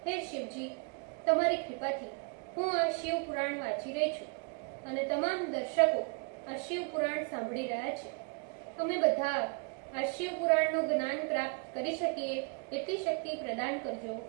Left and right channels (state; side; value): quieter; left; 37.6 dB